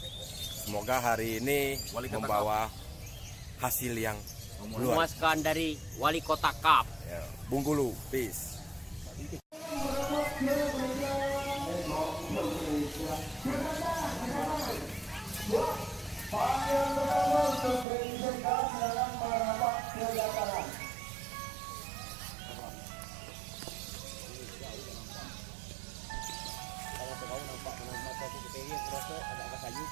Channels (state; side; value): drops out; left; at 17.9 s